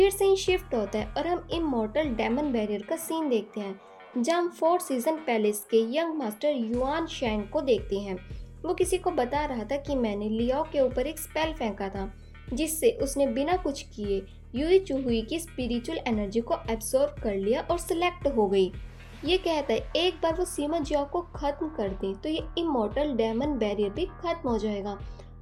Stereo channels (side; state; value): both; identical; correlation 1.00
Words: सीन शिफ्ट होता है और हम इमॉर्टल डेमन बैरियर का सीन देखते हैं जहाँ हम 4 सीजन पैलेस के यंग मास्टर युआन शैंग को देखते हैं। वो किसी को बता रहा था कि मैंने लियाओ के ऊपर एक स्पेल फेंका था, जिससे उसने बिना कुछ किए यूई चुहुई की स्पिरिचुअल एनर्जी को एब्सॉर्ब कर लिया और सिलेक्ट हो गई। ये कहता है एक बार वो सीमा जियाओ को खत्म कर दे तो ये इमोर्टल डेमन बैरियर भी खत्म हो जाएगा